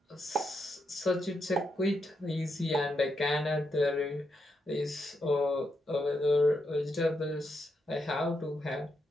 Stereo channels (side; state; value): both; normal; correlation 0.82